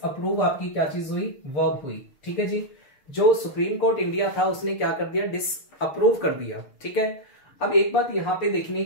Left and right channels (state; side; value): late; right; 6.7 ms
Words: आपकी क्या चीज हुई, वर्ब हुई, ठीक है जी। जो सुप्रीम कोर्ट इंडिया था उसने क्या कर दिया, डिसअप्रूव कर दिया, ठीक है। अब एक बात यहां पे देखनी है